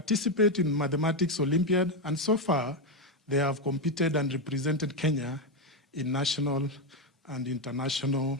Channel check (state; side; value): normal; both; correlation 0.07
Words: in Mathematics Olympiad, and so far, they have competed and represented Kenya in national and international